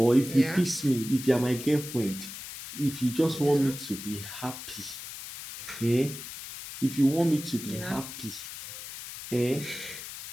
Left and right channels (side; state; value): left; noise; hiss, 11 dB below the sound